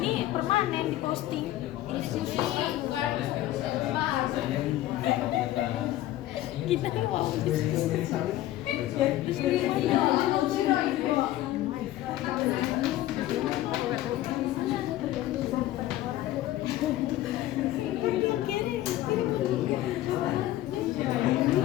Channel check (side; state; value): right; quieter; 14.6 dB